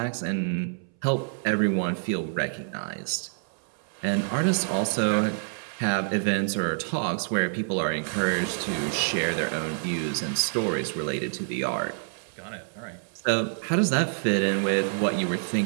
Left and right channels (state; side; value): silent; left; 60 dB below the other